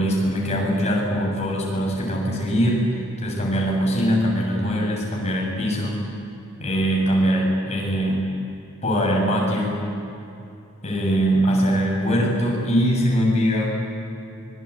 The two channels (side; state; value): both; normal; correlation 0.71